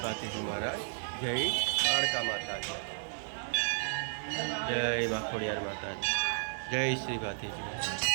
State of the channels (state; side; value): silent; left; digital silence